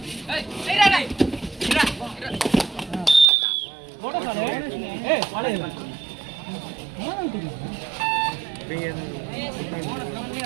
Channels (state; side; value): drops out; left; at 3.2 s